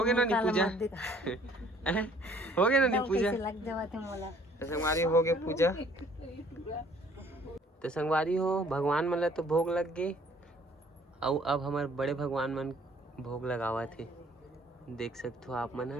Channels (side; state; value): both; normal; correlation 0.58